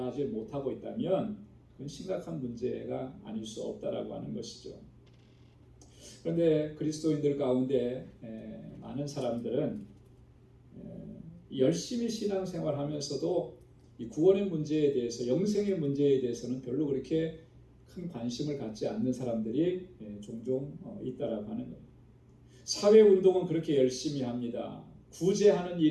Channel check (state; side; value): identical; both; correlation 1.00